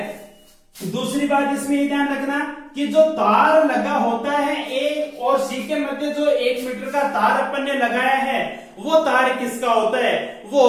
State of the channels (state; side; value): identical; both; correlation 1.00